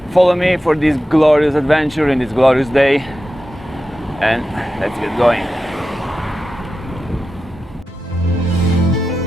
follow me for this glorious adventure in this glorious day, and let's get going.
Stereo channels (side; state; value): both; normal; correlation 0.92